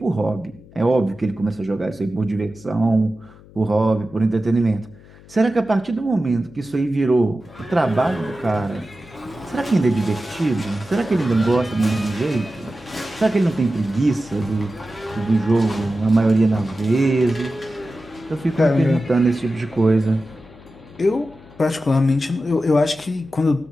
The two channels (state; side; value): noise; left; hum, 23 dB below the sound